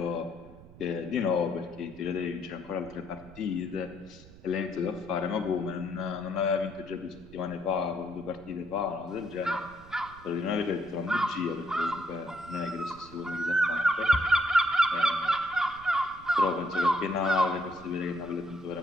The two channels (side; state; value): right; noise; rumble, 20 dB below the sound